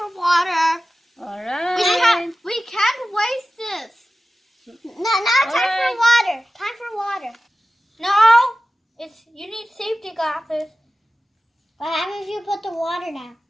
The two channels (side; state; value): both; normal; correlation 0.95